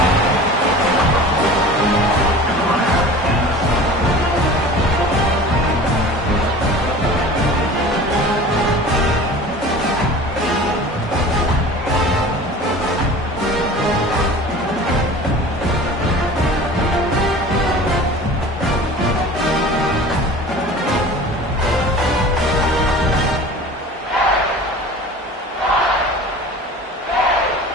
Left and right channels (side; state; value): both; normal; correlation 0.40